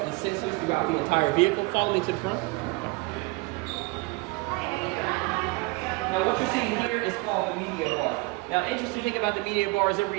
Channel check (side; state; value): left; quieter; 25.4 dB